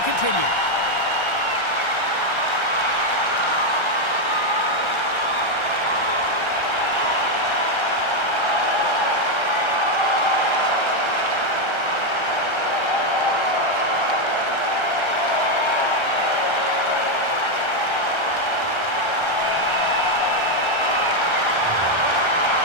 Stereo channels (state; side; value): late; right; 1.3 ms